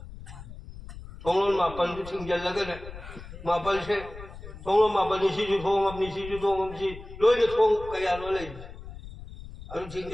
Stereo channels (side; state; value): left; noise; rumble, 14 dB below the sound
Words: थोंग मापन जो थिंग लगे ने मापन से थोंग मापन सी जो थोंग अपनी सी जो थोंग हम सी लोई ने थोंग कया लो ले अनु थिंग